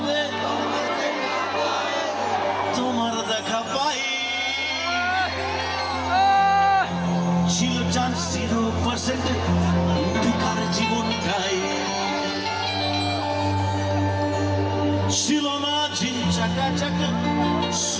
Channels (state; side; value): identical; both; correlation 1.00